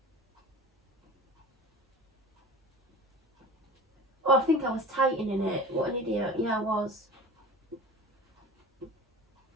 Oh, I think I was tightening it. What an idiot. Yeah, I was.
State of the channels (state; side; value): normal; both; correlation 0.37